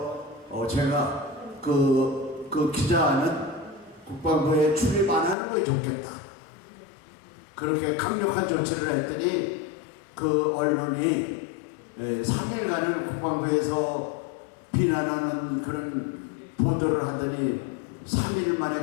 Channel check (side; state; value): right; drops out; at 5.4 s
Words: 제가 그 기자는 국방부에 출입 안 하는 게 좋겠다. 그렇게 강력한 조치를 했더니 그 언론이 3일간을 국방부에서 비난하는 그런 보도를 하더니 3일